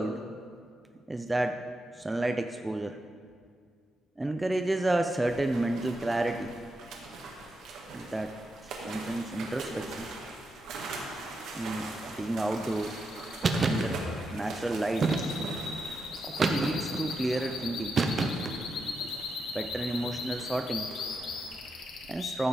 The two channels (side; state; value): both; normal; correlation 0.85